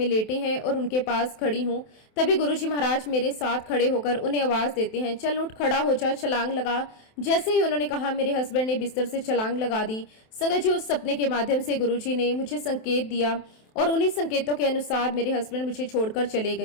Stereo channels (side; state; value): right; late; 27 ms